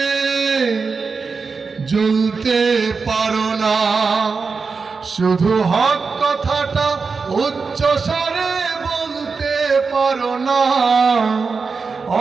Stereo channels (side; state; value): left; quieter; 4.8 dB